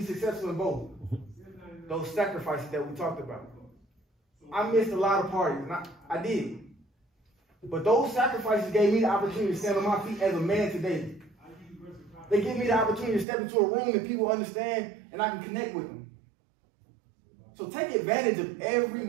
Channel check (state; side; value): drops out; left; at 13.2 s